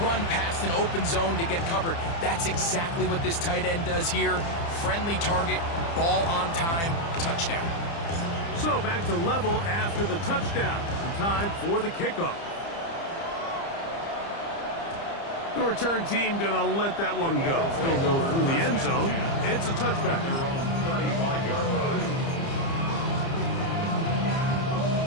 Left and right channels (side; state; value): right; late; 30 ms